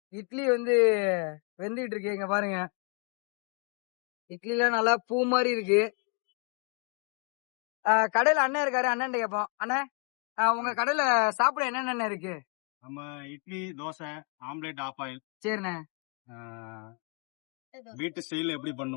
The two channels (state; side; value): quieter; right; 38.2 dB